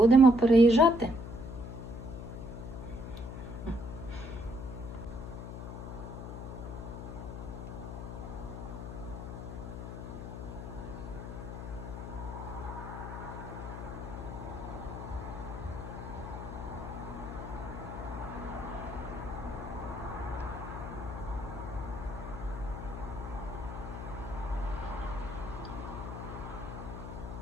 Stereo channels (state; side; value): noise; left; hum, 8 dB below the sound